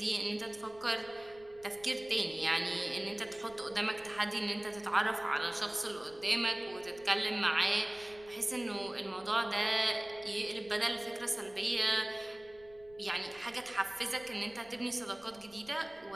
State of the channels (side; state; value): left; noise; rumble, 25 dB below the sound